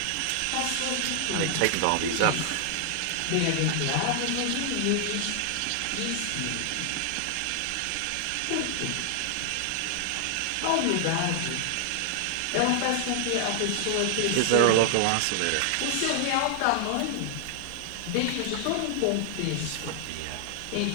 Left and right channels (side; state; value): both; different; correlation 0.00